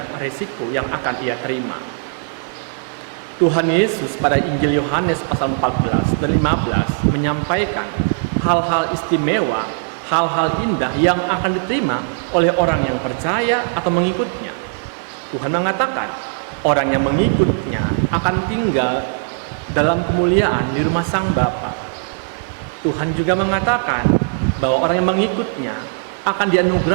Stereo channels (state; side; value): silent; left; digital silence